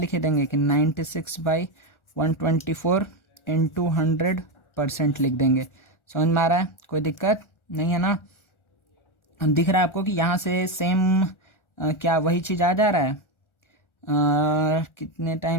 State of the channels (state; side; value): late; right; 1.4 ms